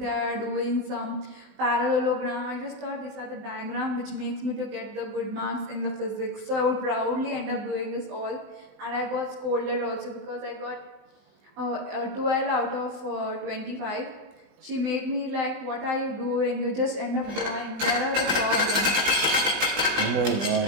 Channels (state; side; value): late; left; 20 ms